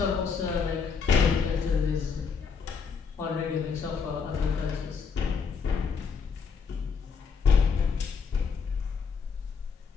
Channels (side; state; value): right; quieter; 5.8 dB